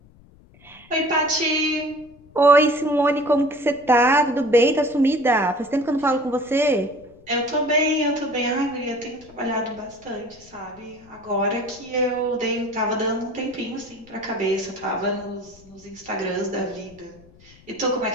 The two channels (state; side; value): noise; left; rumble, 26 dB below the sound